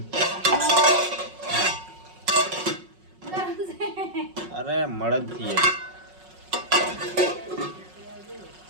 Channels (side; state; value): left; late; 5.4 ms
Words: અરે મળદ થી